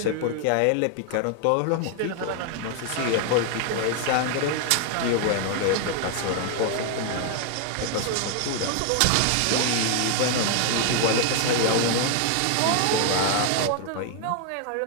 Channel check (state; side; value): different; both; correlation 0.00